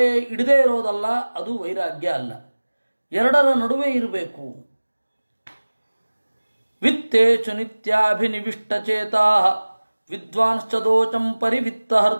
ಇಡದೇ ಇರೋದಲ್ಲ, ಅದು ವೈರಾಗ್ಯ ಅಲ್ಲ. ಎರಡರ ನಡುವೆ ಇರಬೇಕು. ವಿತ್ತೇಚು ನಿತ್ಯಾಭಿನಿವಿಷ್ಟಚೇತಾ ವಿದ್ವಾಂಶ್ಚ ದೋಚಂ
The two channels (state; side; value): inverted; both; correlation -1.00